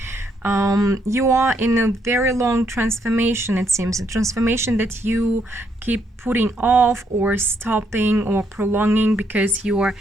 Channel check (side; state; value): both; normal; correlation 0.74